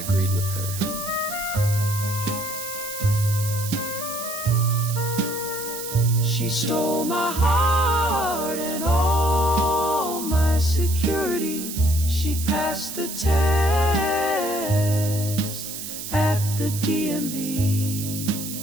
with her. She stole my heart and all my security. She passed the test at the DMV.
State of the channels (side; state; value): right; noise; hiss, 8 dB below the sound